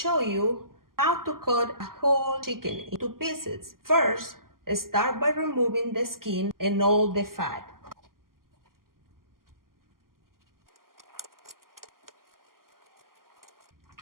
you how to cut a whole chicken into pieces. First, start by removing the skin and all the fat.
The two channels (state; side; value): late; left; 0.92 ms